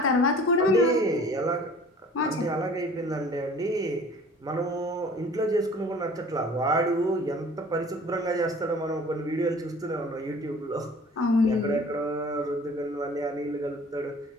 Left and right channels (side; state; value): both; normal; correlation 0.48